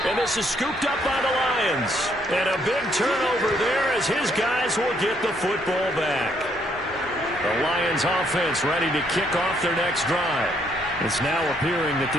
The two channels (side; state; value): both; normal; correlation 0.70